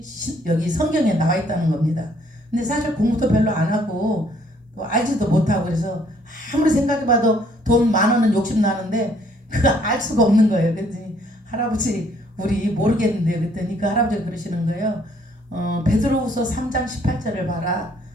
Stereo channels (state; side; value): normal; both; correlation 0.64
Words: 여기 성경에 나와 있다는 겁니다. 근데 사실 공부도 별로 안 하고 또 알지도 못하고 그래서 아무리 생각해봐도 돈 10,000원은 욕심나는데 그거 알 수가 없는 거예요. 그랬더니 할아버지 우리 모르겠는데 그랬더니 그 할아버지가 그러시는 거예요. 베드로후서 3장 18절을 봐라.